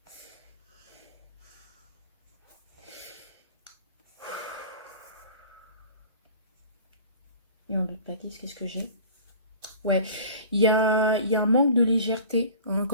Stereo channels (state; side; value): inverted; both; correlation -0.42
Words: Et en d'autres paquets, qu'est-ce que j'ai? Ouais, il y a un manque de légèreté, hein,